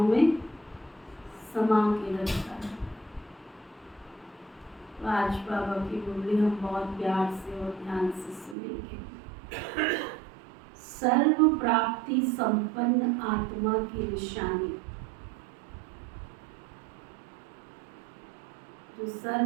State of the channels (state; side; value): drops out; left; at 8.6 s